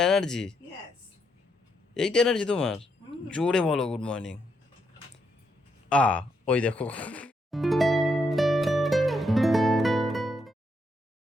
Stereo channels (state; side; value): normal; both; correlation 0.78